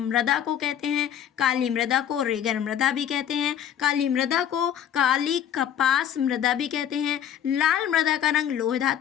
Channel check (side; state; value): right; quieter; 9.7 dB